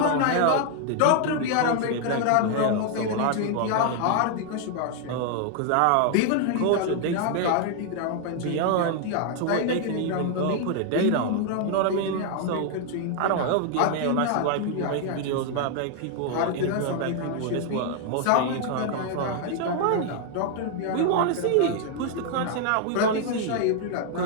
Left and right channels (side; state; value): both; different; correlation 0.00